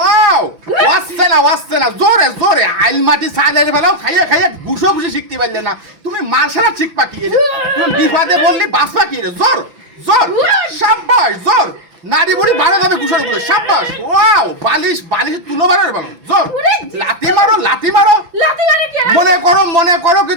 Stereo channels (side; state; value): left; late; 6.0 ms